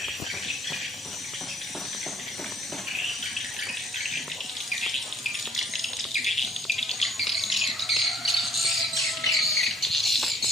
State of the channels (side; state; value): both; normal; correlation 0.61